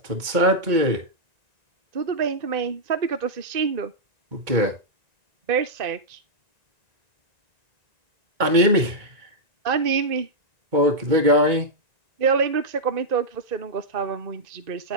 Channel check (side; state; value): left; late; 1.9 ms